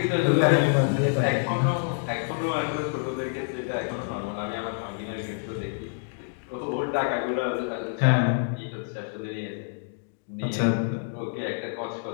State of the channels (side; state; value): right; silent; digital silence